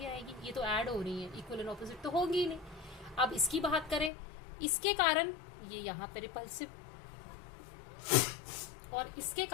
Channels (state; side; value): drops out; right; at 4.1 s